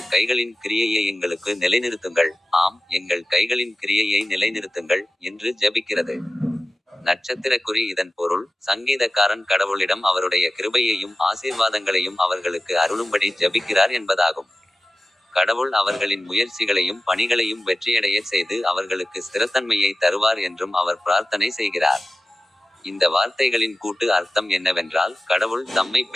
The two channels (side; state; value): both; normal; correlation 0.95